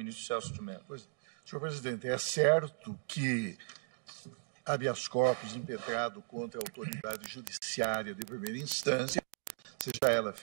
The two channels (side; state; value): left; silent; digital silence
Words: Celso de Mello. Senhor presidente, é certo que habeas corpus impetrado contra a autoridade judiciária de primeira instância, seja ela